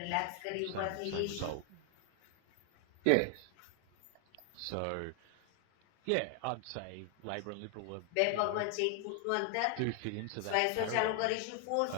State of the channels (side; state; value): both; different; correlation 0.00